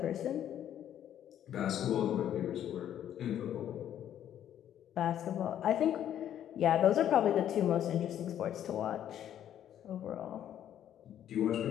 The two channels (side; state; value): right; quieter; 10.6 dB